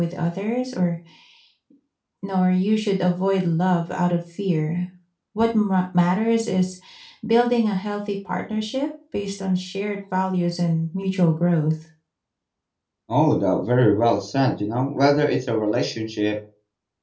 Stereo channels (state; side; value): identical; both; correlation 1.00